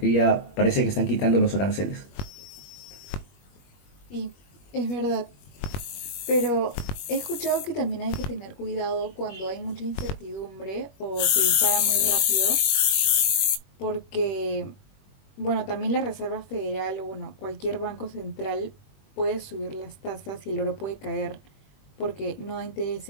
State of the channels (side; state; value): right; late; 21 ms